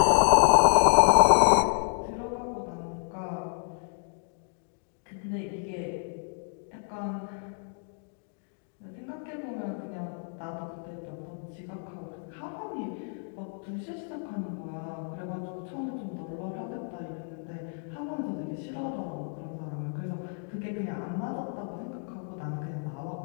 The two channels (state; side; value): silent; right; 58 dB below the other